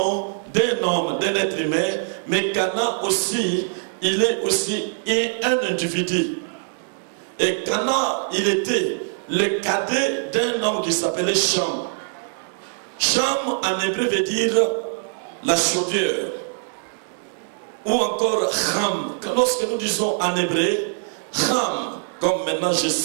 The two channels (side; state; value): left; silent; digital silence